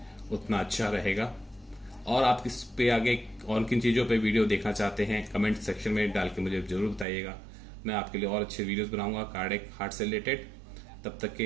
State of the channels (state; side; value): drops out; left; at 7.1 s